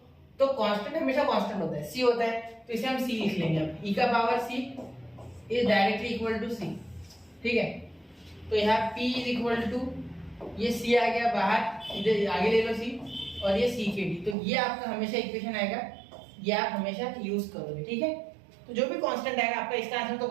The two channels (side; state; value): left; drops out; at 14.4 s